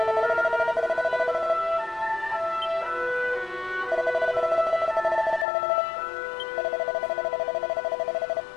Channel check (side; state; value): right; drops out; at 5.5 s